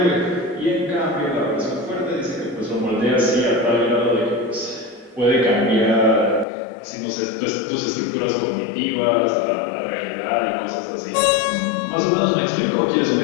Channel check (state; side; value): drops out; right; at 6.5 s